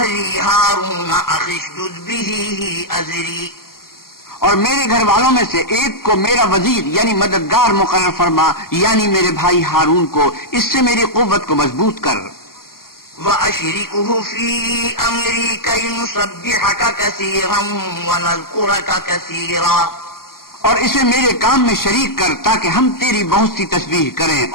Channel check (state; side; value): late; right; 0.92 ms